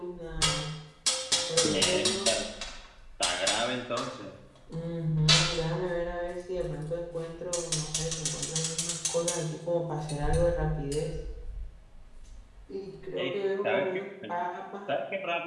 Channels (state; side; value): identical; both; correlation 1.00